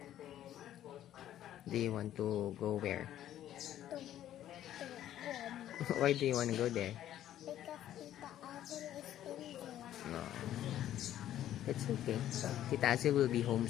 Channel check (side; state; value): right; quieter; 12.0 dB